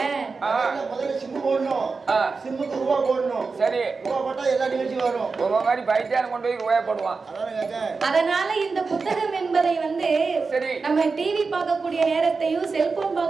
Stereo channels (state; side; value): quieter; left; 4.5 dB